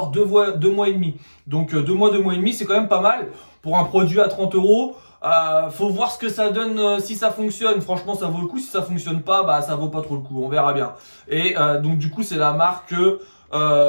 2 mois et demi. Donc 2 mois, 2 mois et demi, c'est quand même pas mal. Pour un produit à 30 €, faut voir ce que ça donne si ça fonctionne. Franchement, ça vaut le coup. Si ça fonctionne pas, bah ça vaut pas trop le coup. On verra bien. Et donc du coup, c'est la marque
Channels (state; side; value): inverted; both; correlation -1.00